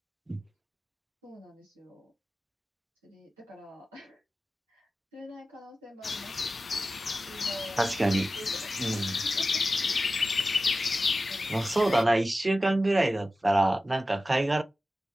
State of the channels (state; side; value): normal; both; correlation 0.94